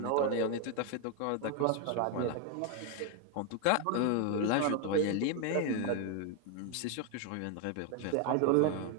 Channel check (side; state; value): both; different; correlation 0.01